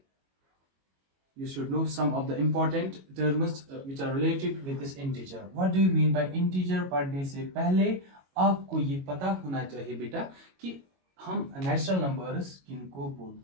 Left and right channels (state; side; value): late; left; 22 ms